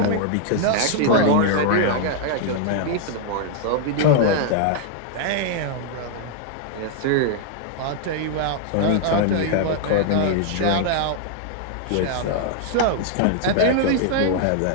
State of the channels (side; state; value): both; different; correlation 0.00